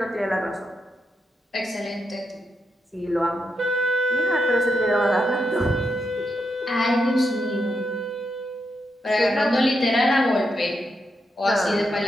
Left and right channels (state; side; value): normal; both; correlation 0.83